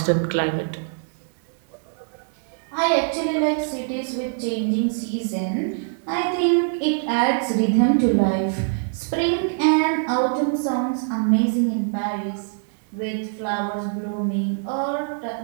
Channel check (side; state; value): left; silent; digital silence